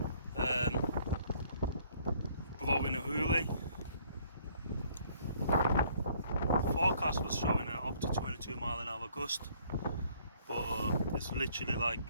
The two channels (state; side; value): inverted; both; correlation -0.62